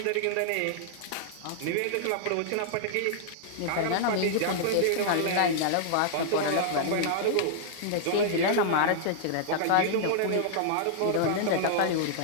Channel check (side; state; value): both; different; correlation -0.01